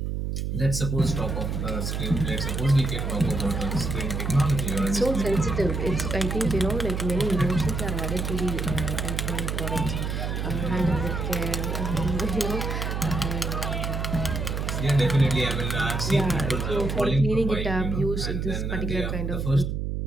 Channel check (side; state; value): right; noise; hum, 2 dB below the sound